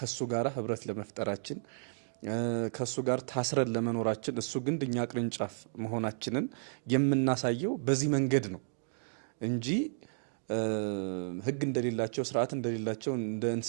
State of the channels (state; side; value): silent; left; digital silence